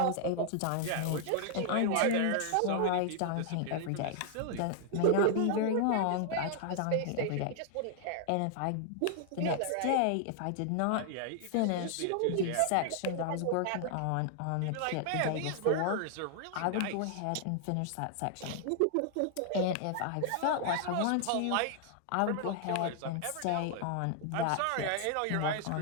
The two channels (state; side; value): different; both; correlation 0.00